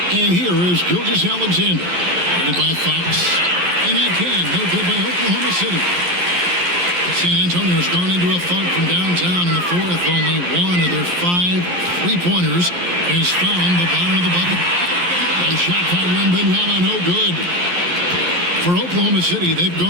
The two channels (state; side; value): late; left; 11 ms